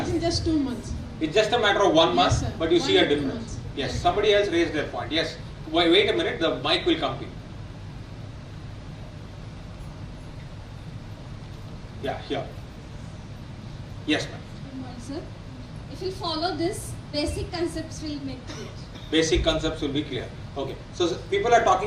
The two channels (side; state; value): both; identical; correlation 1.00